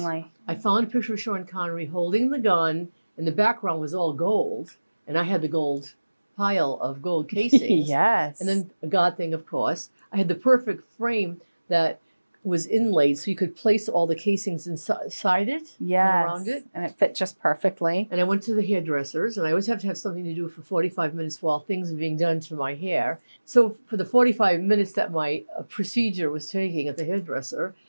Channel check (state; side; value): inverted; both; correlation -1.00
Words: I found a picture of Sean Connery holding the gun, and the background was all gold. And I had the gold pile of gold casings. Yes. And then a God thing, of course. I had the perfect frame that was inlaid so you could place all the casings inside it and around it. And it fit just perfectly. And I went to the hairdressers, and I always have to have something to do for 45 minutes while things are being done to my hair. So for the 45 minutes that my procedure was taking at the hairdresser,